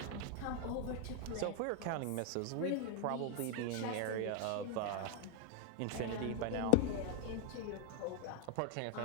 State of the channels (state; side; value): different; both; correlation 0.00